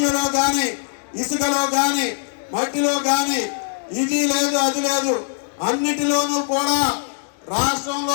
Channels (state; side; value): silent; right; digital silence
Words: గాని ఇసుకలో గాని మట్టిలో గాని ఇది లేదు అది లేదు అన్నిటిలోనూ కూడా